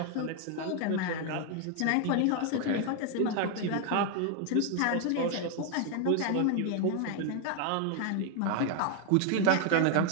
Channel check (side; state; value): both; different; correlation 0.01